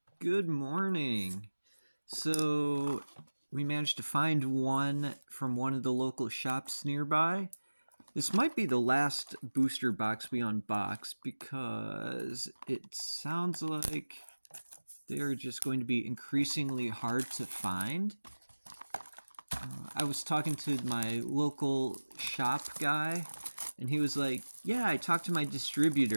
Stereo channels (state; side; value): inverted; both; correlation -1.00